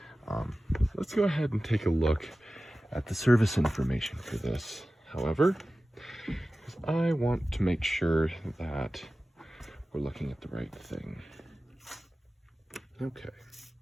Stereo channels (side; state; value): both; normal; correlation 0.96